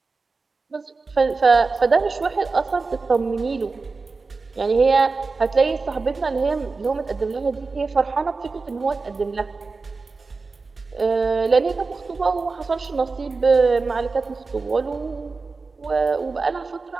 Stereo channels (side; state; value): left; quieter; 4.1 dB